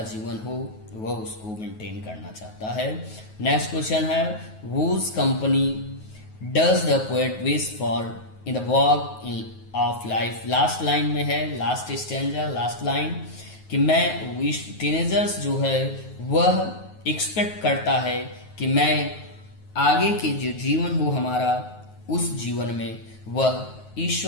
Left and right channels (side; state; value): right; late; 9.3 ms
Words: जीवन हो वह उसको मेंटेन करना चाहता है। नेक्स्ट क्वेश्चन है whose company does the poet wish for in the walk of life। Last line में है, लास्ट स्टैंजा, लास्ट लाइन कि मैं टीनेजर्स जो है वह एक्सपेक्ट करता है कि मैं आगे के जो जीवन हो हमारा उस जीवन में वह